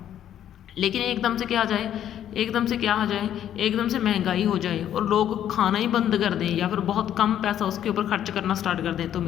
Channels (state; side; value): quieter; right; 10.6 dB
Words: लेकिन एकदम से क्या आ जाए, एकदम से क्या आ जाए, एकदम से महंगाई हो जाए और लोग खाना ही बंद कर दें या फिर बहुत कम पैसा उसके ऊपर खर्च करना स्टार्ट कर दें, तो